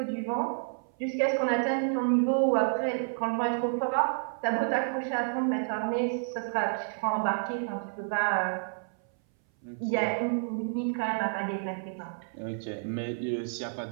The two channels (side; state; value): left; silent; 58 dB below the other